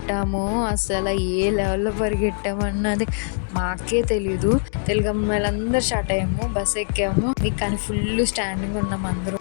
అసలు ఏ లెవెల్‌లో పరిగెట్టామన్నది మాకే తెలీదు. తెలుగు అమ్మాయిలందరూ స్టార్ట్ అయ్యాము. బస్ ఎక్కాము. కానీ ఫుల్ స్టాండింగ్ ఉన్నాం అందరూ.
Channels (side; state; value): right; silent; digital silence